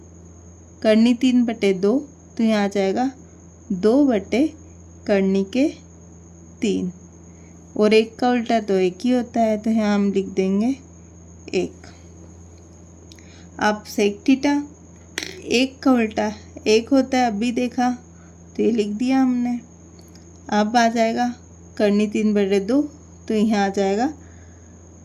करनी 3/2, तो यहाँ आ जाएगा 2 करनी के 3। और 1 का उल्टा तो 1 ही होता है, तो यहाँ हम लिख देंगे 1। अब सेक थीटा, 1 का उल्टा 1 होता है, अभी देखा तो ये लिख दिया हमने। अब आ जाएगा करनी 3/2, तो यहाँ आ जाएगा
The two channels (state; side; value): identical; both; correlation 1.00